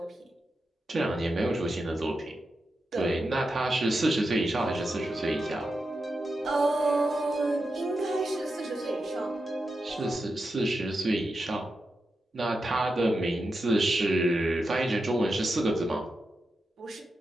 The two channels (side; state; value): both; normal; correlation 0.89